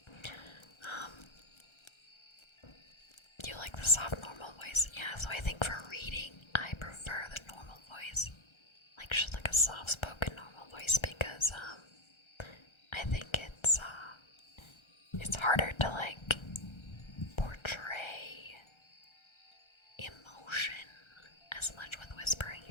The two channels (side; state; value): right; late; 1.3 ms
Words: Do you like the soft normal voice? Yeah, so I think for reading, I prefer the normal voice. Like just like a soft-spoken normal voice because I think it's harder to like portray emotion as much with whispering,